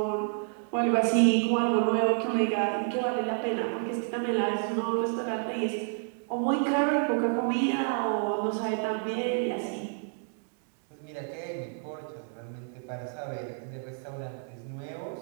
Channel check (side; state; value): left; silent; 58 dB below the other